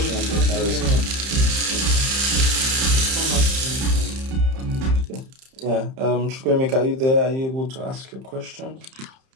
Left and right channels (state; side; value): late; left; 30 ms